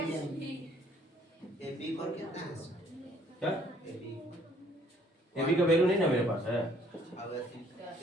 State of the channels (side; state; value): both; normal; correlation 0.62